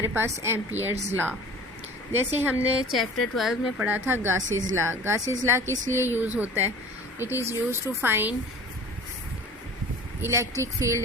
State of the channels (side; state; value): both; normal; correlation 0.43